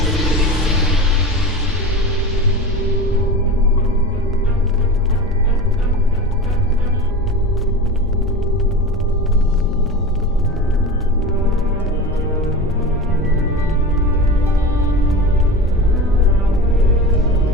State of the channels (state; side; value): normal; both; correlation 0.30